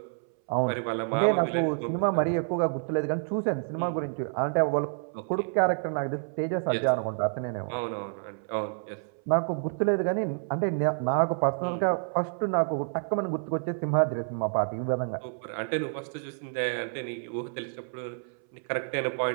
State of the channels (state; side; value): silent; left; 59 dB below the other